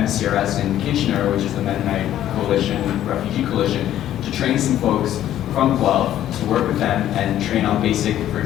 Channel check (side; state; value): right; quieter; 12.0 dB